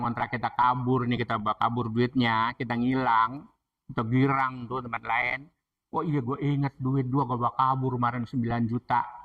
ngontrak kita kabur nih, kita bawa kabur duitnya, kita ngilang, atau girang tuh tempat lain. Oh iya gue inget duit gue bawa kabur kemarin 9 juta.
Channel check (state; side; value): identical; both; correlation 1.00